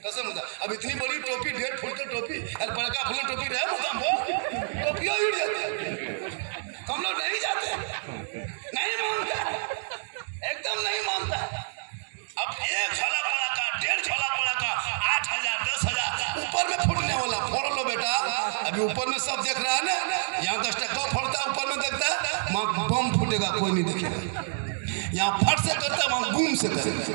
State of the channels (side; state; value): left; silent; digital silence